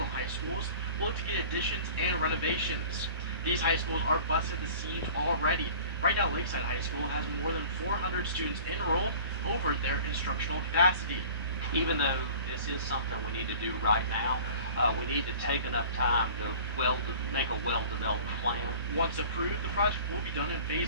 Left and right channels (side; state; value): both; inverted; correlation -0.44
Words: High Schools, will look to get additions and renovations. These high schools are busting the seams already. Right now, Lakeside High School has more than 400 students enrolled over their instructional capacity. Even though this is something we need to do right now, we need to take enough time to make a well-developed plan. Once approved, the project will be done in